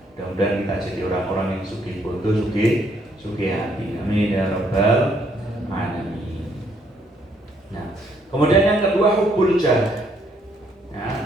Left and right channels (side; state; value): both; normal; correlation 0.70